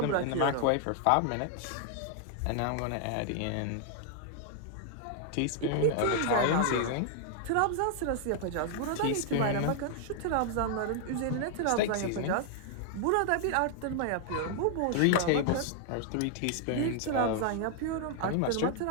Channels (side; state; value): both; different; correlation 0.00